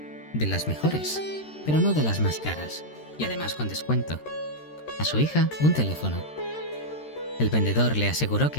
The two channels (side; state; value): right; late; 13 ms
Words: de las mejores, pero no de las más caras, y además con descuento. A su hija, un teléfono. El vendedor le aseguró